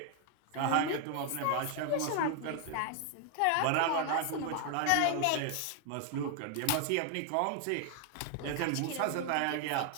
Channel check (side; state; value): both; different; correlation 0.00